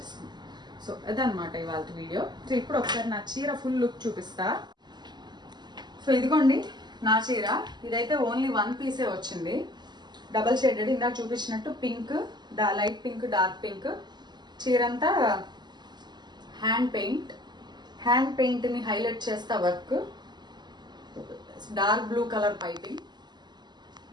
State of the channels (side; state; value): left; late; 0.21 ms